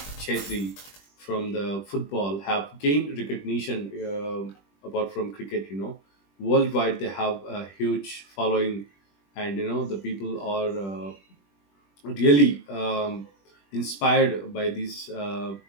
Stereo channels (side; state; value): right; late; 20 ms